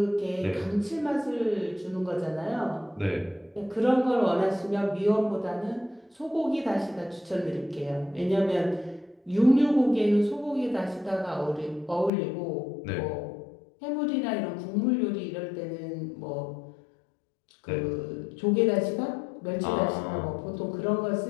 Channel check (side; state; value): right; drops out; at 12.1 s